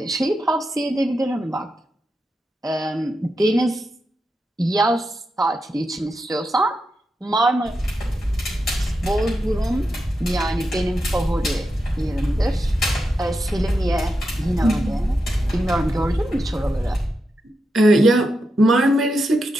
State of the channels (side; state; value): both; normal; correlation 0.87